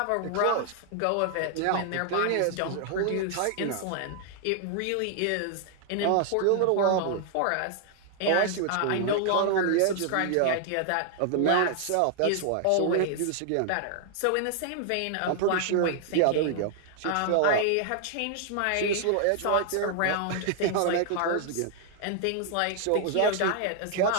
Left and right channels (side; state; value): both; different; correlation 0.00